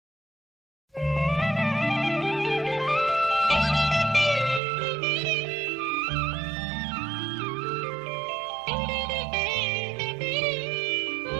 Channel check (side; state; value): left; drops out; at 4.6 s